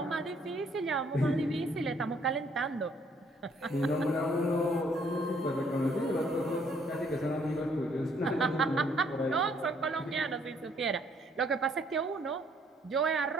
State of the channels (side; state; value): both; normal; correlation 0.65